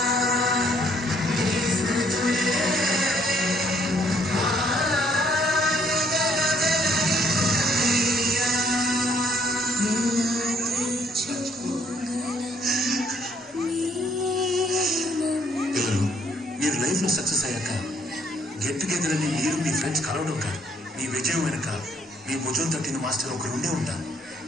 మీరు లైఫ్లో సక్సెస్ అయ్యాక గెట్ టుగెదర్ అని మీరు మీ ఫ్రెండ్స్ కలవడం కాదు, మీ విజయం వెనక మీ భుజం తట్టిన మాస్టర్ ఒకరు ఉండే ఉంటారు.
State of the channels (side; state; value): both; normal; correlation 0.66